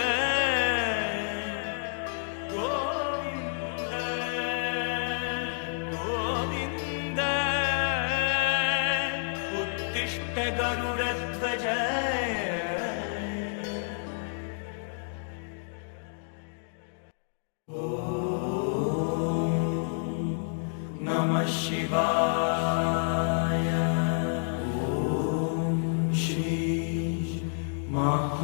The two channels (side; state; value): right; silent; digital silence